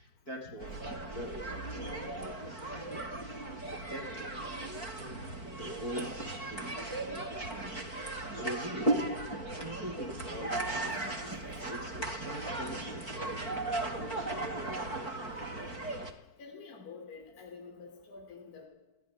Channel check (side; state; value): right; late; 4.5 ms